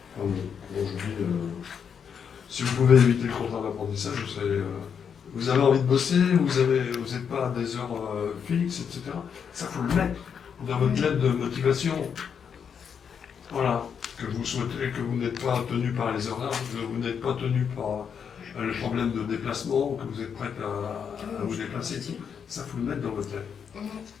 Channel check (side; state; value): right; quieter; 7.2 dB